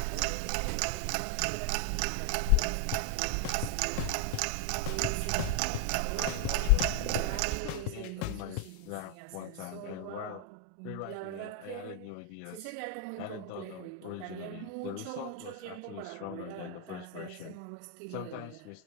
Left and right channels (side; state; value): both; different; correlation 0.00